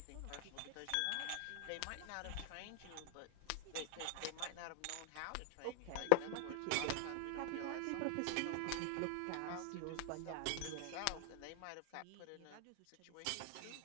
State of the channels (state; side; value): different; both; correlation 0.01